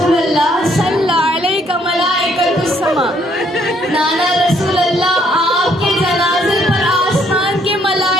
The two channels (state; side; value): normal; both; correlation 0.68